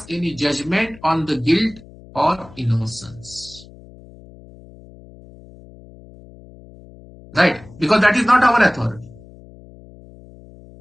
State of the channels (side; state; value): left; noise; hum, 21 dB below the sound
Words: any judgment on the guilt or innocence. Right? Because that is not our authority.